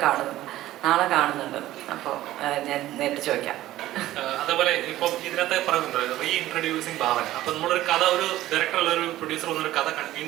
കാണുന്നു, നാളെ കാണുന്നുണ്ട്. അപ്പോൾ ഞാൻ നേരിട്ട് ചോദിക്കാം. അതേപോലെ ഇപ്പം ഇതിനകത്ത് പറയുന്നുണ്ട് റീ ഇൻട്രൊഡ്യൂസിങ് ഭാവന. അപ്പൊ നമ്മളൊരു കഥ, ഒരു ഡയറക്ടർ അല്ല ഒരു പ്രൊഡ്യൂസർ വന്നൊരു കഥ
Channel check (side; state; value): left; quieter; 15.0 dB